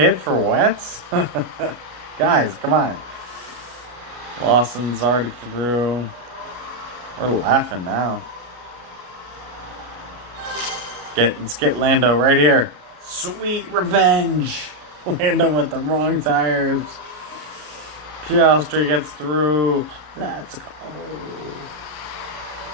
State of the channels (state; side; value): late; left; 33 ms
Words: for wets? Guys, come on. Lawson's already through. We're laughing now. Let's get Lando right here. Sweet revenge. Lando with the wrong tires. Piastri gets through. Let's go.